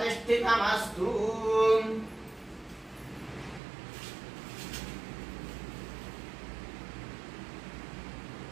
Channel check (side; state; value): left; drops out; at 3.6 s